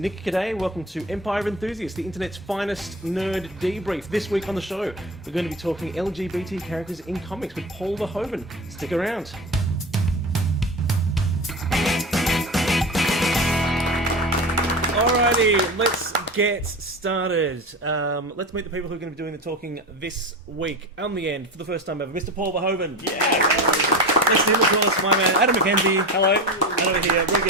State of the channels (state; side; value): normal; both; correlation 0.28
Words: Caddaye. Welcome to Empire of Enthusiasts, the internet's finest nerd debrief. This week on the show, we're going to be talking LGBT characters in comics with Paul Verhoeven. Stick around. Alrighty, let's get started. Let's meet the people who are going to be doing the talking this week. On the end, for the first time ever, Mr. Paul Verhoeven. Yeah! Next to him, of course, my man Adam McKenzie. Hello. And over here,